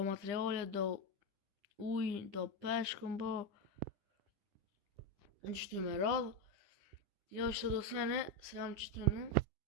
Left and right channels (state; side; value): late; left; 9.9 ms